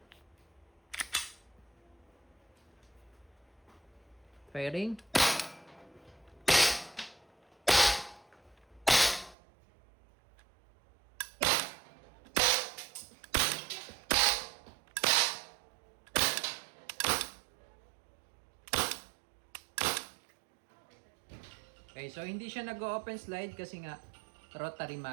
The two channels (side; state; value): left; drops out; at 9.3 s